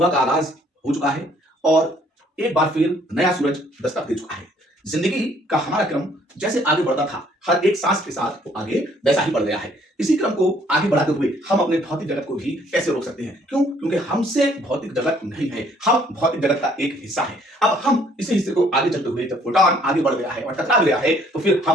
का आगाज हो चुका है और एक बार फिर नया सूरज दस्तक दे चुका है। जिंदगी का हमारा क्रम जैसे आगे बढ़ता था, हर एक सांस के साथ वो आगे वैसा ही बढ़ गया है। इसी क्रम को आगे बढ़ाते हुए हम अपने भौतिक जगत को भी कैसे रोक सकते हैं? क्यों? क्योंकि हमसे भौतिक जगत नहीं है, हम भौतिक जगत का एक हिस्सा है। अब हम इसी हिस्से को आगे चलते हुए जब फोटॉन आगे बढ़ गया है और टकरा गया है तो फिर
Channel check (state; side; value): normal; both; correlation 0.62